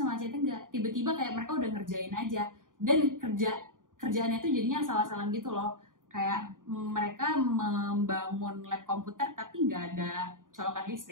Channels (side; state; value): left; late; 0.89 ms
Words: ACT enggak. Tiba-tiba kayak mereka udah ngerjain aja, dan kerjaannya tuh jadinya salah-salah gitu loh. Kayak mereka membangun lab komputer tapi nggak ada colokan